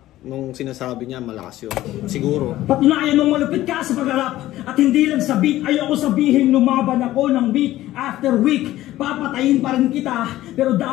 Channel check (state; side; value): quieter; right; 15.1 dB